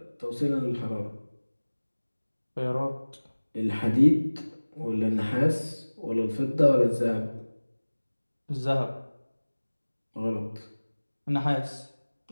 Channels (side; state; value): both; inverted; correlation -1.00